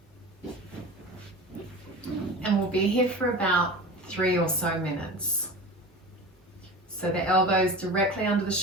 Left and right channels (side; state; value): both; normal; correlation 0.34